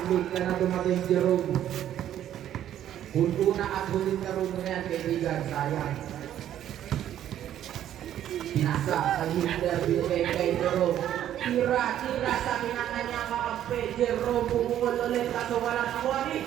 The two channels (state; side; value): quieter; left; 11.3 dB